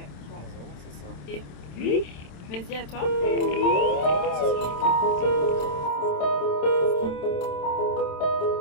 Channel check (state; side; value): late; right; 27 ms